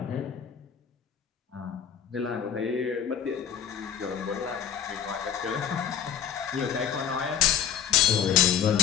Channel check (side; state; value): right; quieter; 8.6 dB